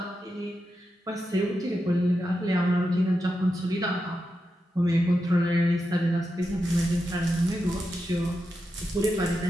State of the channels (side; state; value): both; normal; correlation 0.87